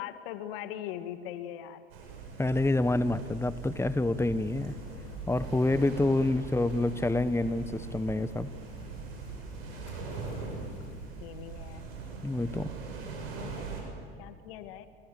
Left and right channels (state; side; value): normal; both; correlation 0.83